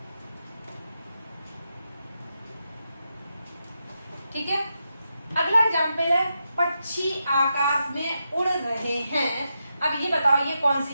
ठीक है। अगला एग्जाम्पल है पक्षी आकाश में उड़ रहे हैं। अब ये बताओ ये कौन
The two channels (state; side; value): inverted; both; correlation -0.85